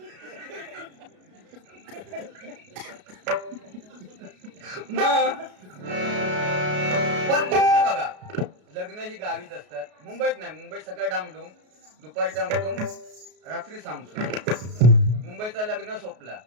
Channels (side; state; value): left; late; 33 ms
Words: पण बघा लग्न ही गावीच असतात. मुंबईत नाही. मुंबईत सकाळी डामडूम, दुपारी डामडूम, रात्री सामसूम. मुंबईचा लग्न सोपला.